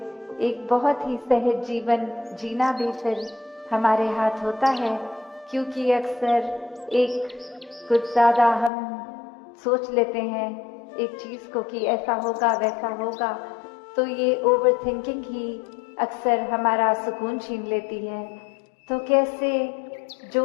एक बहुत ही सहज जीवन जीना भी फिर हमारे हाथ होता है। क्योंकि अक्सर एक कुछ ज्यादा हम सोच लेते हैं एक चीज को कि ऐसा होगा वैसा होगा, तो ये ओवर थिंकिंग ही अक्सर हमारा सुकून छीन लेती है। तो कैसे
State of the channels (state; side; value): drops out; right; at 8.7 s